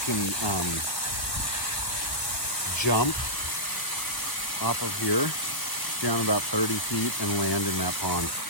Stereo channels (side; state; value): right; late; 1.1 ms